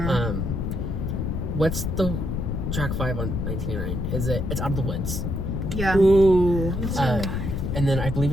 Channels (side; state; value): left; noise; rumble, 2 dB below the sound